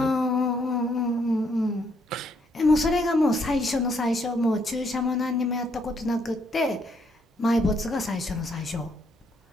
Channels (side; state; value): both; normal; correlation 0.72